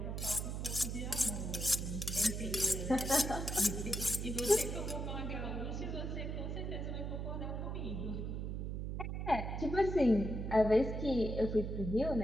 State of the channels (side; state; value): right; noise; hum, 3 dB below the sound